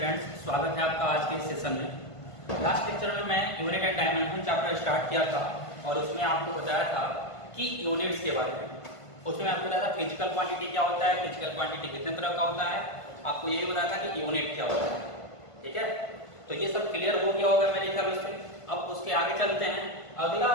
स्वागत है आपका आज के सेशन में। लास्ट लेक्चर में मैं unit and dimension chapter start किया था और उसमें आपको बताया था कि यूनिट्स के बारे में। उसमें आपको बताया था फिजिकल क्वांटिटी क्या होता है, फिजिकल क्वांटिटी कितने तरह का होता है, आपको यही बताया था कि यूनिट क्या होता है। ठीक है, तो ये सब क्लियर हो गया होगा मेरे ख्याल से। अब उसके आगे चलते हैं। अगला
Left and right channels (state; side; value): late; right; 1.5 ms